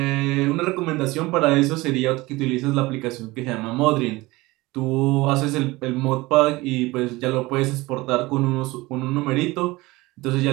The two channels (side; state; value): left; quieter; 20.9 dB